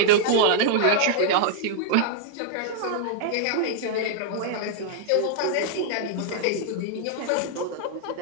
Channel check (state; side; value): different; both; correlation -0.01